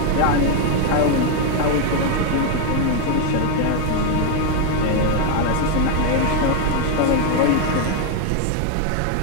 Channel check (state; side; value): different; both; correlation 0.01